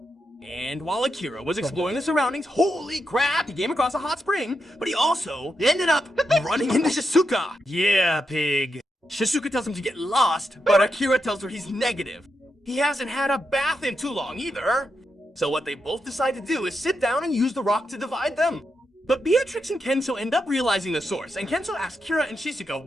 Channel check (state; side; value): normal; both; correlation 0.85